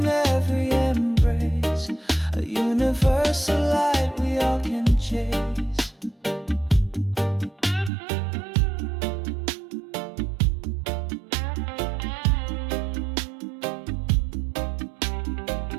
every embrace, a universal light we all can chase.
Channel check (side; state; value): left; drops out; at 7.9 s